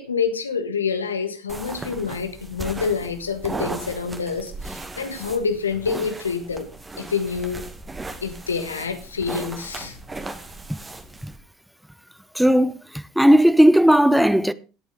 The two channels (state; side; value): normal; both; correlation 0.61